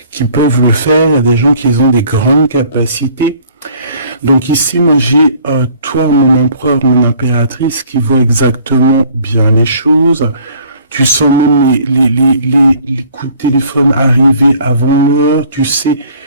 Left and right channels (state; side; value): inverted; both; correlation -0.55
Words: peuvent le faire, il y a des gens qui ont des grandes capacités. Donc ici, moi j'ai toi, mon empereur, mon impératrice, qui voit exactement bien les choses. Tu sens même les coups de téléphone arriver avant l'heure. Tu sais,